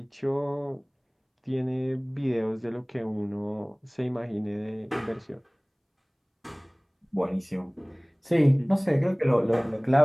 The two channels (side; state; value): both; identical; correlation 1.00